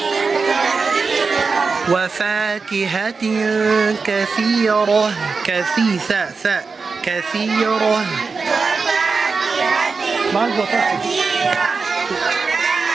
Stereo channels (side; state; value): left; quieter; 4.6 dB